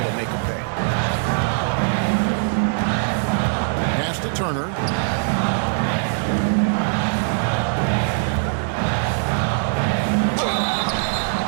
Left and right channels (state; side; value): silent; left; digital silence